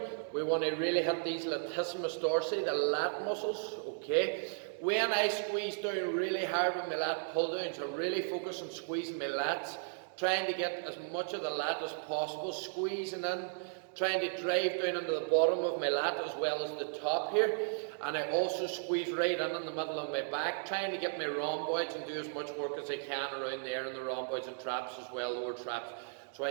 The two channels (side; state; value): left; silent; digital silence